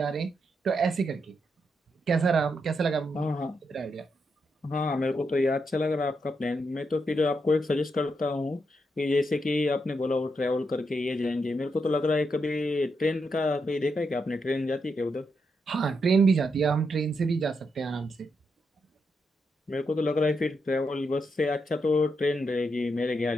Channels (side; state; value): both; normal; correlation 0.82